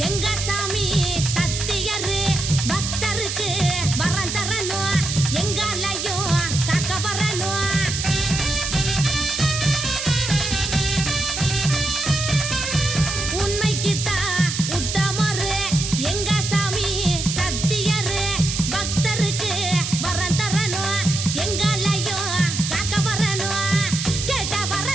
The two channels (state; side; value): noise; right; hiss, 3 dB below the sound